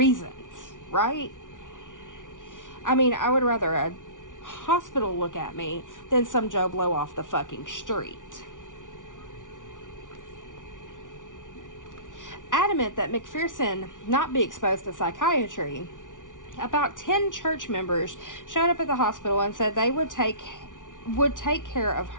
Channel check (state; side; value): late; right; 0.87 ms